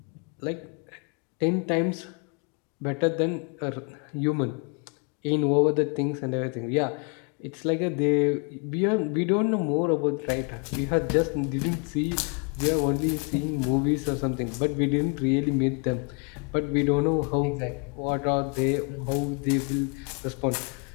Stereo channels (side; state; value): right; quieter; 35.6 dB